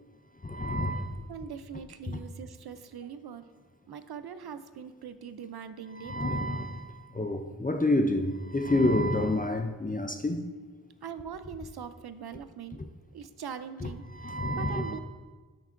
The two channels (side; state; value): both; normal; correlation 0.59